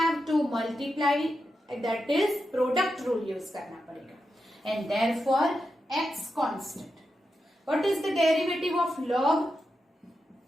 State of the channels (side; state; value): both; normal; correlation 0.88